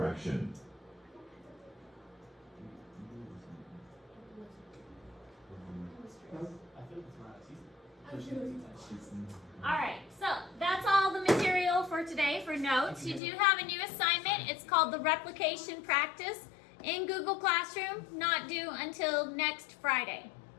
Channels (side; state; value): right; drops out; at 13.2 s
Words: Alright, so that's all the material for today for notes. You do have a new assignment. It's called the Replication Practice in Google Classroom, not due until next Friday.